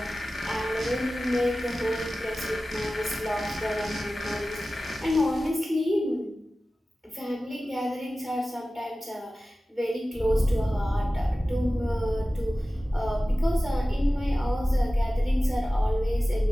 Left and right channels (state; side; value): normal; both; correlation 0.96